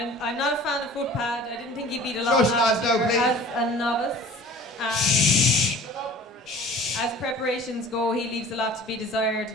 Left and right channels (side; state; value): both; normal; correlation 0.45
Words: not a fan of Footpad. I didn't think he beat a lot Shush, last lads, year now, please. as a novice. Shh. As preparations go, he leaves a lot to be desired.